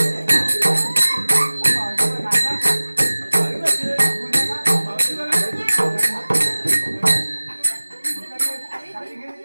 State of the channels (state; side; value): inverted; both; correlation -1.00